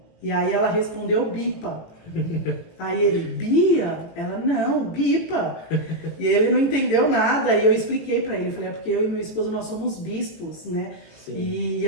E aí ela respondeu Bipa. Aí ele, Bia? Ela, não, Bipa. E ele não entendeu nada, e eu expliquei pra ele, falei, porque eu e meu esposo, nós somos bispos, né? Sim. E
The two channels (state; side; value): late; right; 18 ms